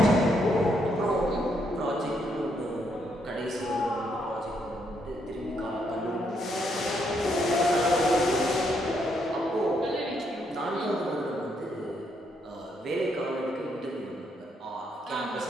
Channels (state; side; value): normal; both; correlation 0.75